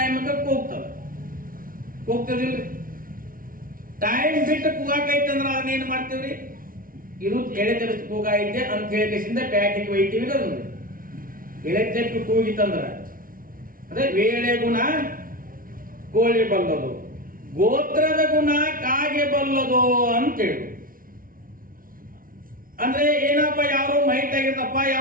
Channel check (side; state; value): left; late; 0.41 ms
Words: ಕೂಗ್ತದಿಲ್ರಿ. ಟೈಮ್ ಬಿಟ್ಟು ಕೂಗಾಕೈತಂದ್ರ ಅದನ್ನೇನ್ ಮಾಡ್ತೀವ್ರಿ, ಇದು ಎಳೆ ತರಿಸಿ ಕೂಗಾಯಿದ್ದೆ ಅಂತ ಹೇಳಿಕೆಸಿಂದ ಪ್ಯಾಟಿಗೆ ಒಯ್ತೀವಿ. ಅದು ಎಳೆ ತೆಪ್ಪು ಕೂಗಿತಂದ್ರ ಅದೇ ವೇಳೆ ಗುಣ ಕೋಳಿ ಬಲ್ಲದು, ಗೋತ್ರದ ಗುಣ ಕಾಗೆ ಬಲ್ಲದು ಅಂತೇಳಿ. ಅಂದ್ರೆ ಏನಪ್ಪ, ಯಾರು ಮೈಟ್ ಆಗಿರ್ತಪ್ಪ,